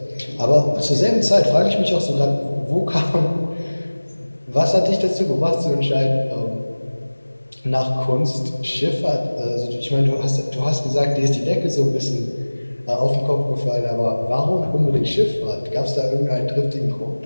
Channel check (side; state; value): both; inverted; correlation -1.00